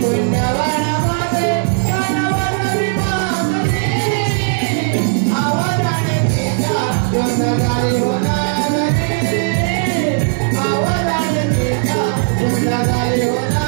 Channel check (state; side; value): silent; left; 63 dB below the other